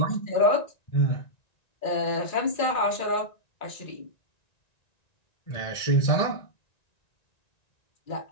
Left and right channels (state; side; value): late; right; 1.9 ms